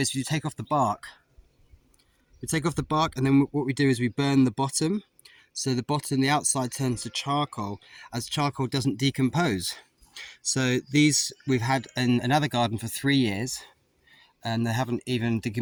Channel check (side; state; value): both; identical; correlation 1.00